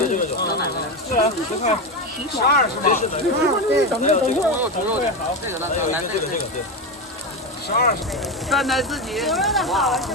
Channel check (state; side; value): normal; both; correlation 0.16